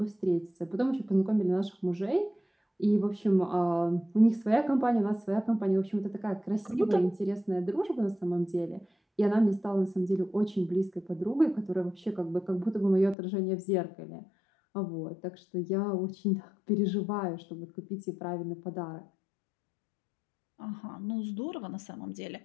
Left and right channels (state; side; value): drops out; right; at 13.2 s